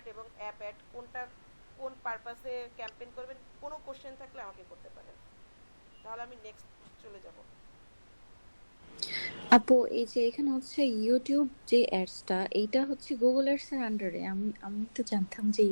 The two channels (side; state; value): both; inverted; correlation -1.00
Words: এবং অ্যাপ অ্যাড কোনটা কোন পারপাসে ক্যাম্পেইন করবেন, কোনো কোশ্চেন থাকলে আমাকে করতে পারেন, তাহলে আমি নেক্সট চলে যাব। আপু এই যে এখানে হচ্ছে ইউটিউব যে অ্যাডসটা, এইটা হচ্ছে গুগল অ্যাডস এর আন্ডারে। আমি আমি তো জানতাম যে